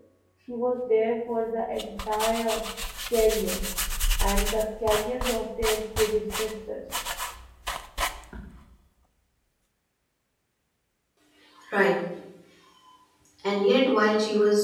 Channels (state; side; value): identical; both; correlation 1.00